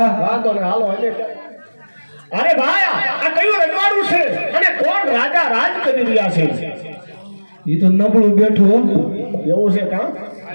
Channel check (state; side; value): inverted; both; correlation -1.00